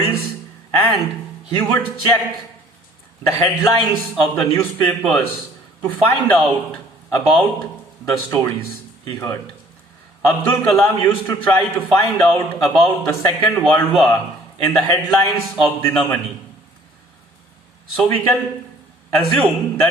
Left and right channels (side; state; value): both; normal; correlation 0.54